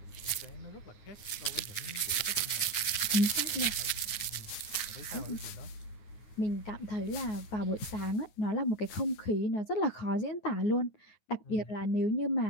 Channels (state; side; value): late; right; 9.6 ms